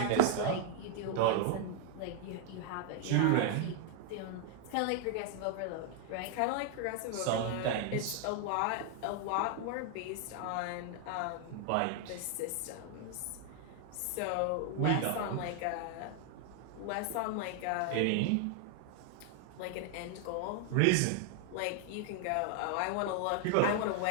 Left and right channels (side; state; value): both; different; correlation 0.00